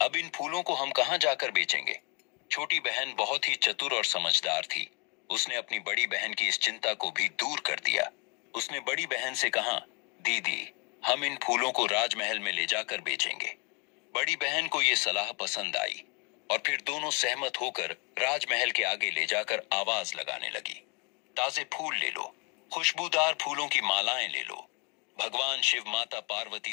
अब इन फूलों को हम कहाँ जाकर बेचेंगे? छोटी बहन बहुत ही चतुर और समझदार थी। उसने अपनी बड़ी बहन की इस चिंता को भी दूर कर दिया। उसने बड़ी बहन से कहा, दीदी, हम इन फूलों को राजमहल में ले जाकर बेचेंगे। बड़ी बहन को ये सलाह पसंद आई और फिर दोनों सहमत होकर राजमहल के आगे ले जाकर आवाज लगाने लगी, ताजे फूल ले लो, खुशबूदार फूलों की मालाएं ले लो। भगवान शिव माता पार्वती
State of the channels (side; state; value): right; quieter; 32.9 dB